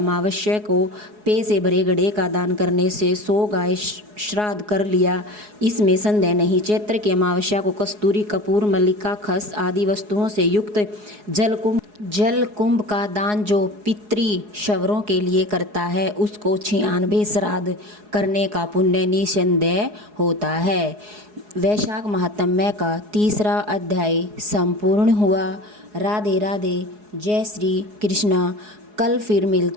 को पे से भरे घड़े का दान करने से 100 गाय श्राद्ध कर लिया, इसमें संदेह नहीं। चैत्र की अमावस्या को कस्तूरी, कपूर, मल्लिका, खस आदि वस्तुओं से युक्त जल कुंभ का दान जो पितृ शवरों के लिए करता है उसको 96 श्राद्ध करने का पुण्य निसंदेह होता है। वैशाख महात्म्य का 3रा अध्याय संपूर्ण हुआ। राधे राधे, जय श्री कृष्णा। कल फिर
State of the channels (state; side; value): late; left; 4.8 ms